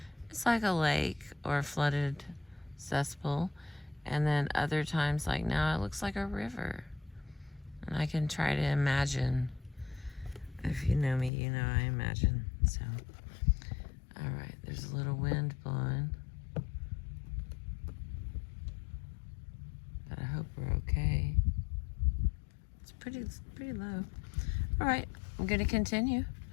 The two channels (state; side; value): drops out; right; at 11.3 s